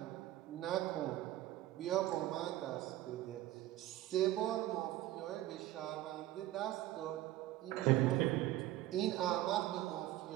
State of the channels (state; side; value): quieter; left; 14.9 dB